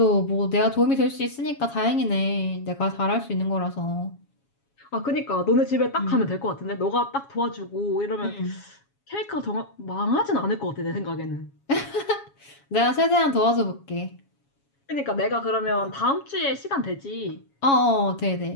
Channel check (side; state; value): right; late; 7.2 ms